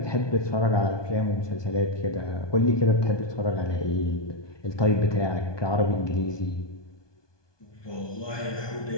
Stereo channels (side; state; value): right; late; 1.2 ms